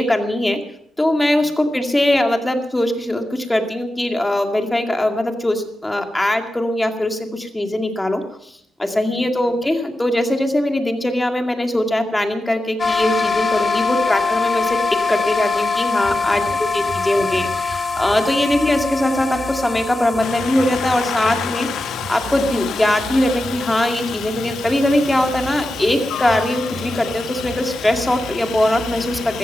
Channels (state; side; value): normal; both; correlation 0.91